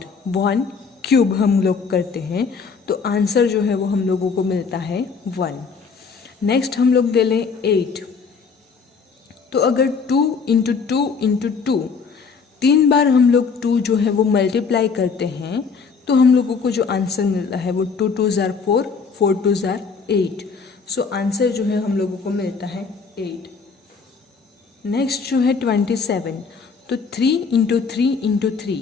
1 क्यूब हम लोग करते हैं तो आंसर जो है वो हम लोगों को मिलता है 1। नेक्स्ट हम लोग ले लें 8। तो अगर 2 इंटू 2 इंटू 2, 3 बार हम लोग 2 जो है वो मल्टीप्लाई करते हैं तो हम लोगों को जो आंसर मिलता है वो 2 2 ज़ार 4, 4 2 ज़ार 8। सो आंसर जो है हम लोगों को मिलता है 8। नेक्स्ट जो है 27। तो 3 इंटू 3 इंटू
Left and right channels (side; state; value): right; quieter; 5.3 dB